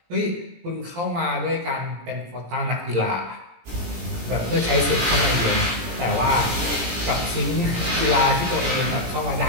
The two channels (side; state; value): left; late; 17 ms